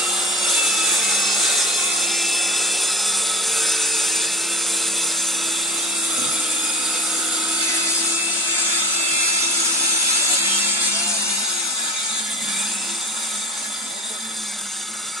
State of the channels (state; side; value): normal; both; correlation 0.35